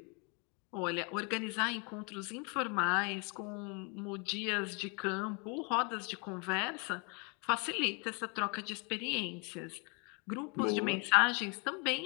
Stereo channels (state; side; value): quieter; right; 33.3 dB